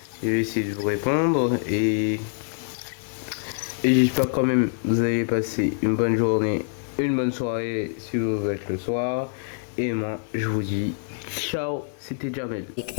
Je vais essayer de vous répondre et j'espère quand même que vous allez passer une bonne journée, une bonne soirée si vous êtes le soir. Et moi, je vous dis ciao, c'était Jamel.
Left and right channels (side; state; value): right; silent; digital silence